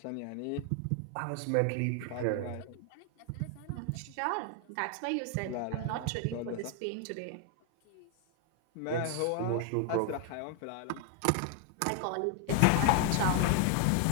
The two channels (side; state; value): both; different; correlation 0.00